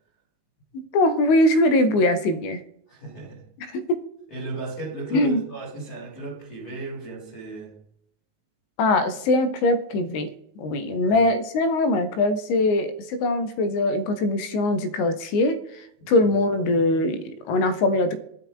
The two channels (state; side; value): late; right; 19 ms